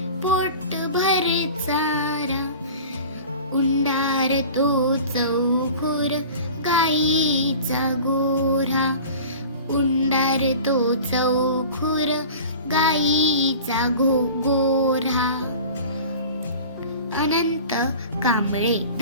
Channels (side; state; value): both; inverted; correlation -0.39